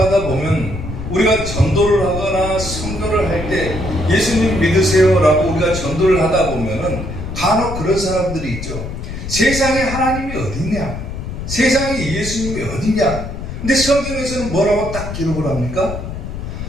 보면 우리가 전도를 하거나 선교를 할 때 예수님 믿으세요 라고 우리가 전도를 하다 보면은 간혹 그런 사람들이 있죠. 세상에 하나님이 어디냐? 세상에 예수님이 어디냐? 근데 성경에서는 뭐라고 딱 기록을 합니까?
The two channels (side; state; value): left; noise; rumble, 7 dB below the sound